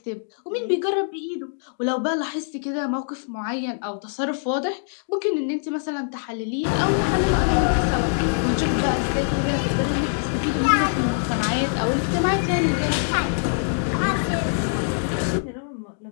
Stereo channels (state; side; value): silent; right; digital silence